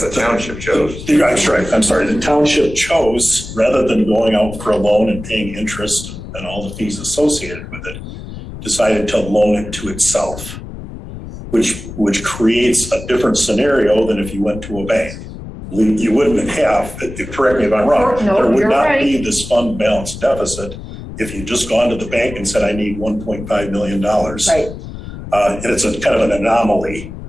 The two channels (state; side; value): noise; left; rumble, 11 dB below the sound